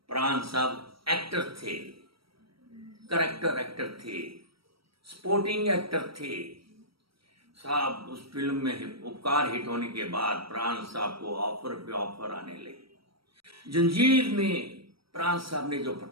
प्राण साहब एक्टर थे, करेक्टर एक्टर थे, स्पोर्टिंग एक्टर थे साहब। उस फिल्म में उपकार हिट होने के बाद प्राण साहब को ऑफर पे ऑफर आने लगे। जंजीर में प्राण साहब ने जो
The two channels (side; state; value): left; late; 0.75 ms